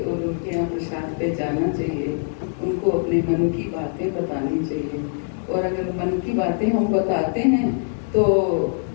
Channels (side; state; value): right; silent; 63 dB below the other